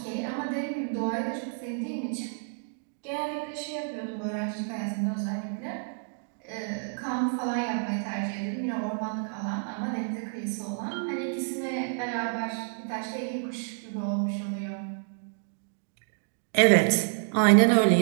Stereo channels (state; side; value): silent; left; digital silence